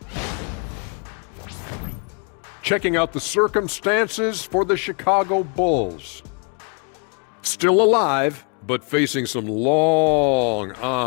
Checking out the circumstances for the Chicago Bulls. Still alive, but facing some long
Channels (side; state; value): right; quieter; 38.1 dB